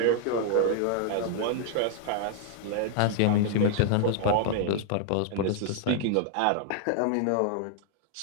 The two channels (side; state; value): both; different; correlation 0.00